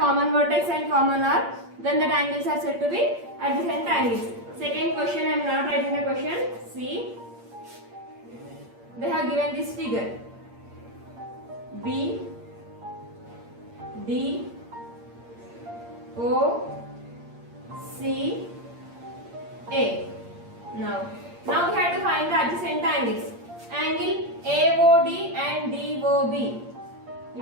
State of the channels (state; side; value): late; left; 8.6 ms